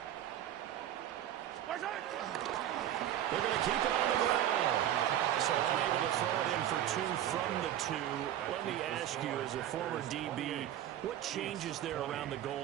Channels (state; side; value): quieter; left; 11.7 dB